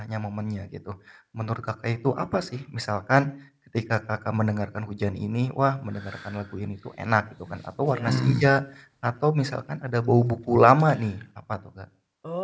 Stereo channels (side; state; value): both; identical; correlation 1.00